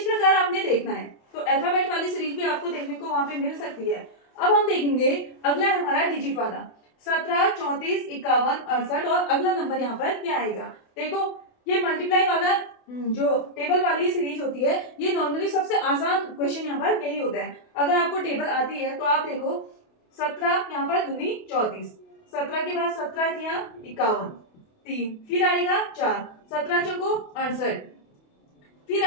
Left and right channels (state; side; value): late; right; 28 ms